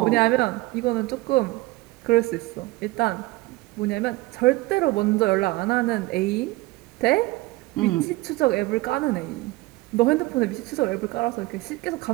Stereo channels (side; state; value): left; quieter; 20.2 dB